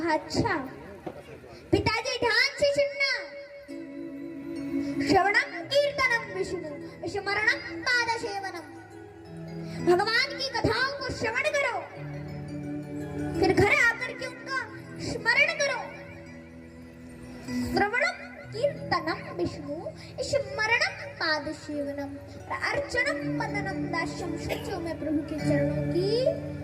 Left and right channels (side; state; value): both; identical; correlation 1.00